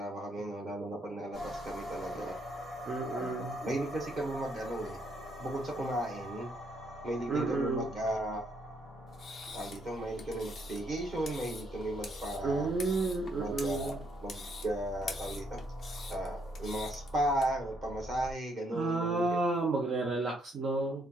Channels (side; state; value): both; normal; correlation 0.72